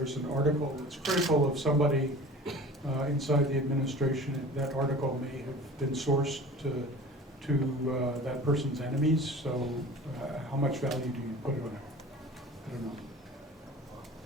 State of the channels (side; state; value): both; normal; correlation 0.40